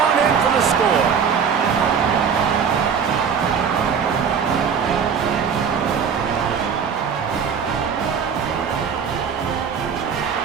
in for the score.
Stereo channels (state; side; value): quieter; left; 6.8 dB